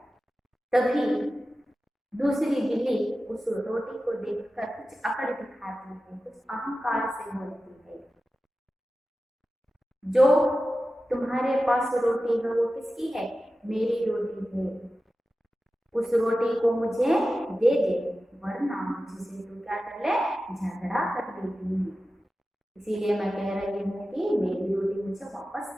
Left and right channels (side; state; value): both; normal; correlation 0.94